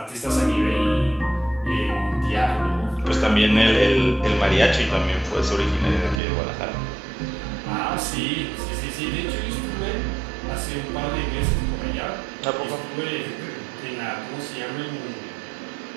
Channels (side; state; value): left; drops out; at 6.2 s